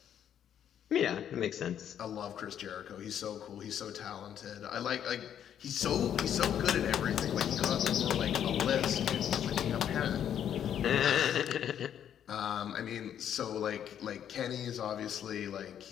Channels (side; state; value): right; quieter; 9.6 dB